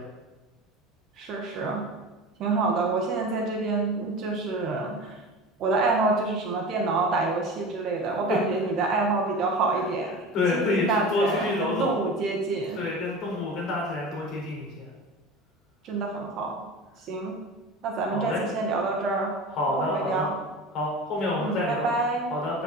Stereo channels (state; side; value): normal; both; correlation 0.32